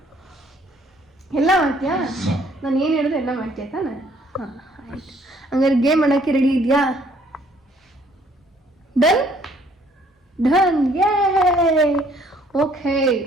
ಎಲ್ಲ ಮಾಡ್ತೀಯಾ? ನಾನು ಏನು ಹೇಳಿದ್ರೆ ಎಲ್ಲ ಮಾಡ್ತೀಯ ತಾನೆ? ಹಾಂ, ಆಯ್ತು. ಹಂಗಾರೆ ಗೇಮ್ ಆಡೋಕ್ಕೆ ರೆಡಿ ಇದೆಯಾ? ಡನ್ ಡನ್, ಯೇ. ಓಕೆ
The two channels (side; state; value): both; normal; correlation 0.62